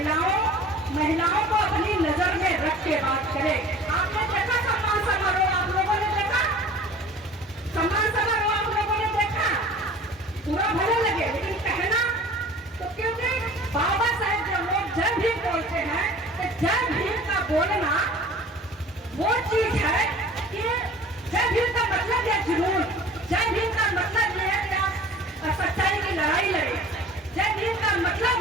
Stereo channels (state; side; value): normal; both; correlation 0.45